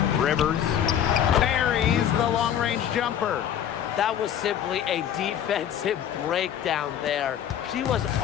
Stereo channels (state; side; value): quieter; right; 9.8 dB